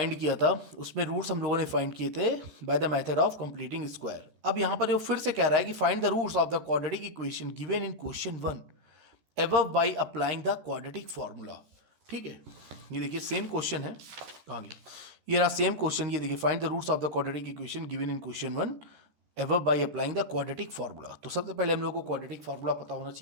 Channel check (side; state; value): left; late; 13 ms